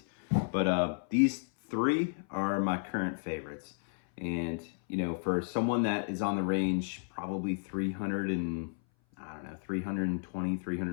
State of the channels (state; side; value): silent; right; 56 dB below the other